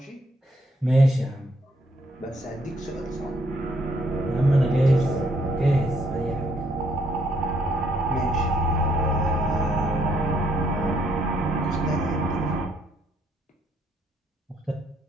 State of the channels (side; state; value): both; normal; correlation 0.70